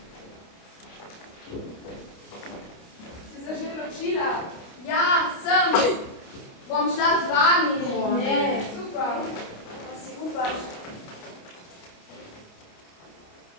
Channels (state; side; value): late; right; 29 ms